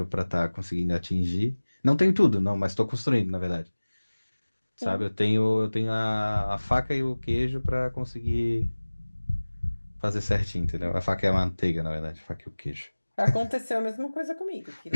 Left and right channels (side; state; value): both; inverted; correlation -1.00